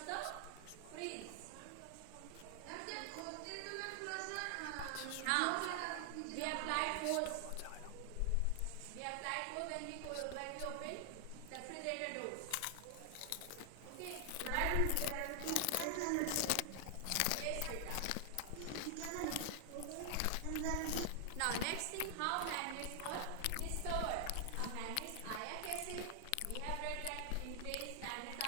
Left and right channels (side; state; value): both; different; correlation 0.00